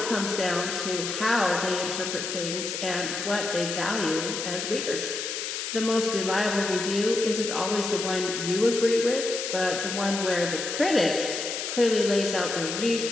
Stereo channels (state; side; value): noise; left; hiss, 4 dB below the sound